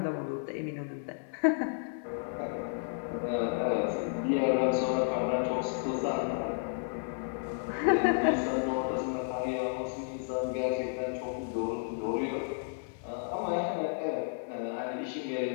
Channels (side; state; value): right; silent; 56 dB below the other